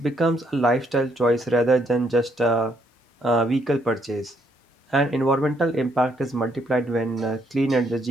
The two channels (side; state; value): both; normal; correlation 0.71